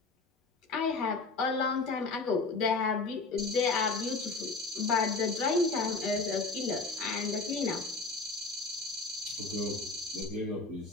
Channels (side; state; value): right; quieter; 3.9 dB